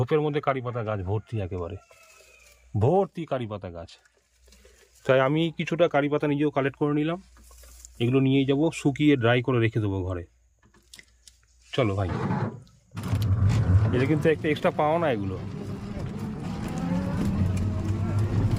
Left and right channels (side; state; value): both; identical; correlation 1.00